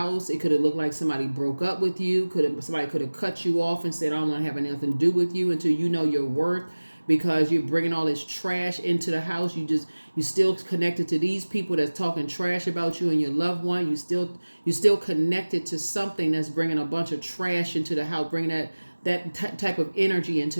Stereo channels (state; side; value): inverted; both; correlation -1.00